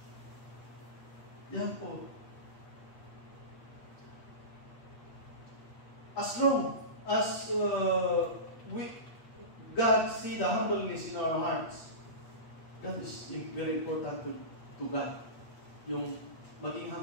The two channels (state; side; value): late; right; 8.3 ms